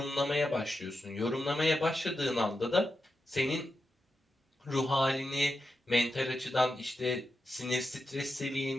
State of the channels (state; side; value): normal; both; correlation 0.89